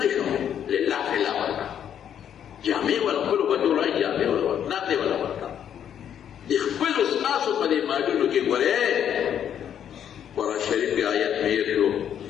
شو لله فلا ورکړه جامې ولخپلو بچو رایي جامې ولورکړه نقدې وله ورکړه د خپلو ستاسو په دې مالونو کې ګورې قرآن شریف کې آیت مې هېر شو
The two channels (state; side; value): quieter; right; 9.3 dB